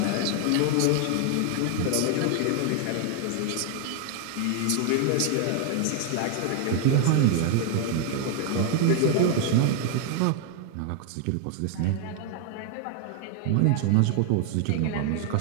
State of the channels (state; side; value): different; both; correlation 0.00